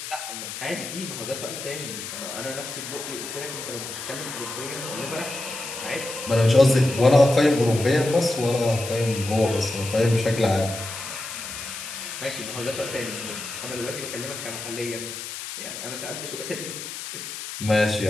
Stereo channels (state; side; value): noise; left; hiss, 8 dB below the sound